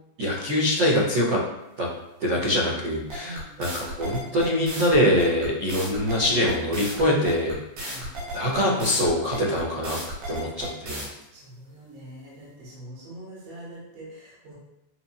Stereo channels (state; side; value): late; left; 14 ms